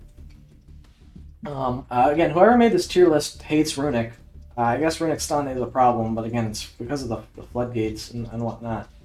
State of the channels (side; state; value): both; identical; correlation 1.00